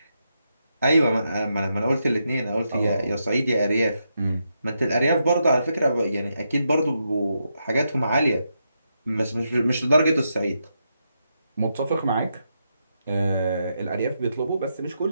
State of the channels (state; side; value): inverted; both; correlation -0.83